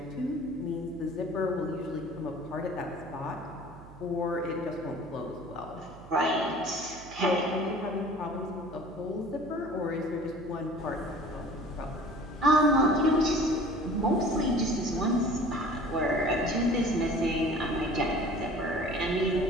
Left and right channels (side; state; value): right; noise; hum, 19 dB below the sound